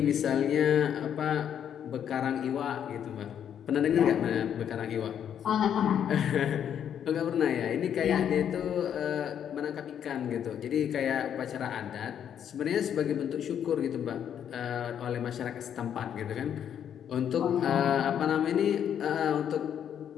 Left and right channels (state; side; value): quieter; right; 9.1 dB